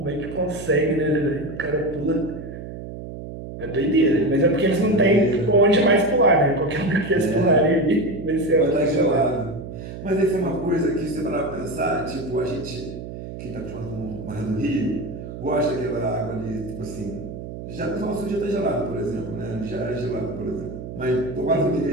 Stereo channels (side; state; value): right; noise; hum, 10 dB below the sound